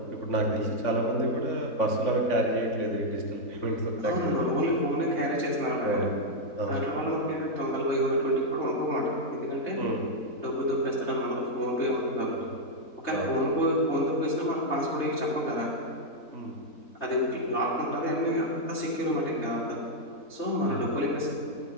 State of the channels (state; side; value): late; right; 3.9 ms